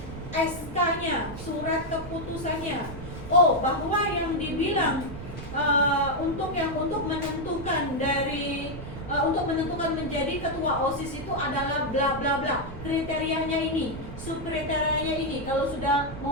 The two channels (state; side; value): noise; right; rumble, 10 dB below the sound